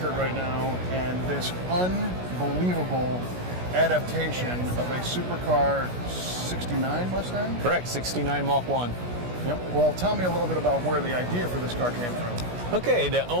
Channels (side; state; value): left; late; 16 ms